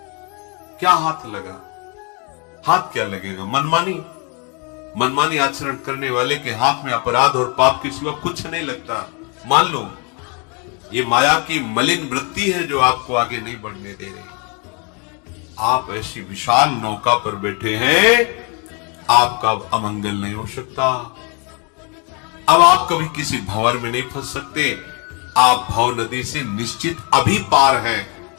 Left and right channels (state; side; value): quieter; right; 33.7 dB